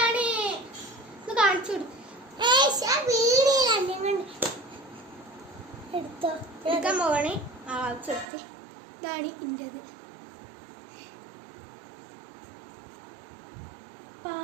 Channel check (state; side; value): drops out; left; at 8.2 s